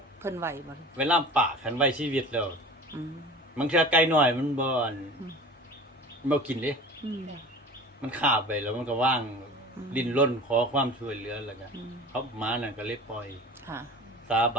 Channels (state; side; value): normal; both; correlation 0.38